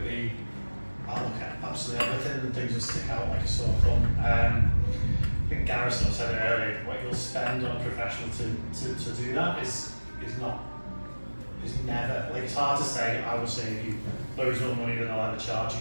be, I'll look at absolutely everything and things that stick out like a sore thumb. I think Gareth sort of said it earlier, what you'll spend on a professional to do that is never, like it's hard to say, I will save you loads more money than I'll ever charge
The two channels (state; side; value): inverted; both; correlation -1.00